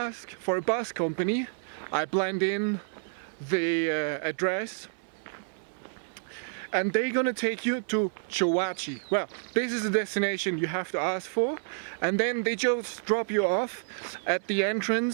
for a bus company. I blend in the address. And they're gonna take you to Chorro. Well, this is the destination you have to ask for. And then they just drop you off at the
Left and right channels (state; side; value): silent; left; 58 dB below the other